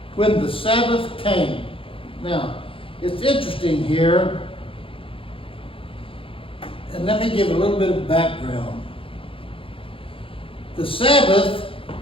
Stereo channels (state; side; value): late; right; 0.26 ms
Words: when the Sabbath came. Now, it's interesting here, and let me give a little bit of background. The Sabbath